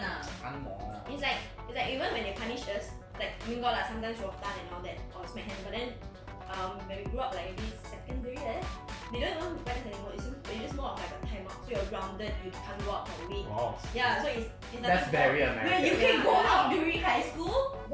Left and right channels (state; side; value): identical; both; correlation 1.00